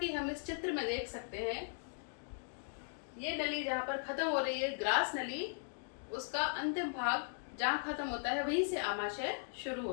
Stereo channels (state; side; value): silent; right; digital silence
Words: हम इस चित्र में देख सकते हैं, ये नली जहां पर खत्म हो रही है ग्रास नली, उसका अंतिम भाग जहां खत्म होता है वहीं से आमाशय शुरू